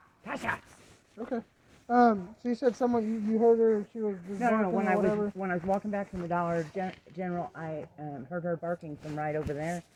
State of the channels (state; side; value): identical; both; correlation 1.00